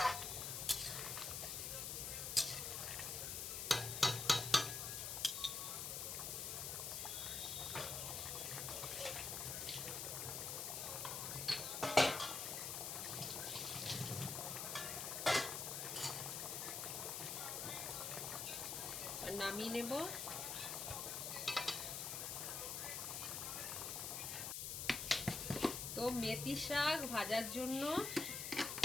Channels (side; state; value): left; noise; hiss, 3 dB below the sound